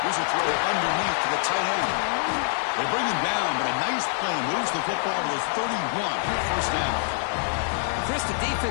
Here's a throw underneath to the tight end. They bring him down, but a nice play moves the football to the 31 for 1st down. Chris, the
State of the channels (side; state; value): right; silent; 61 dB below the other